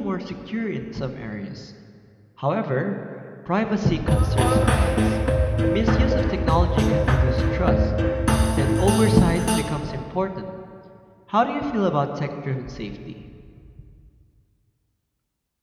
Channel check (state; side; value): identical; both; correlation 1.00